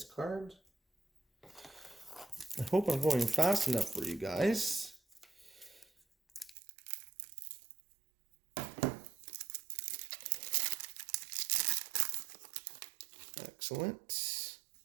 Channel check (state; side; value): drops out; left; at 6.6 s